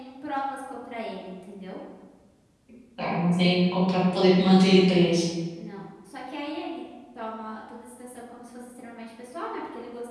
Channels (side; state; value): both; identical; correlation 1.00